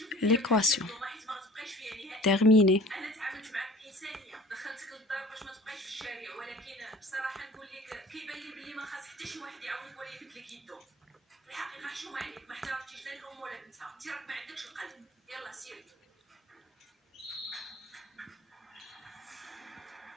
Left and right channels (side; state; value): both; normal; correlation 0.46